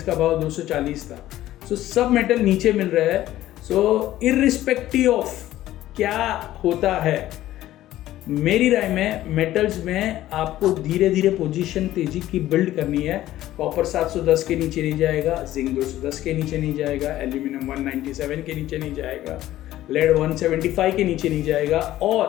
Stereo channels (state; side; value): quieter; right; 14.3 dB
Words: भाव 240 था। सो सब मेटल नीचे मिल रहा है। सो इररिस्पेक्टिव ऑफ क्या होता है, मेरी राय में मेटल्स में आपको धीरे धीरे पोजीशन तेजी की बिल्ड करनी है। कॉपर 710 के नीचे नहीं जाएगा, जिंक 210 के नीचे नहीं जाएगा, एल्यूमिनियम 197 के नीचे नहीं जाएगा, लेड 175 के नीचे नहीं जाएगा,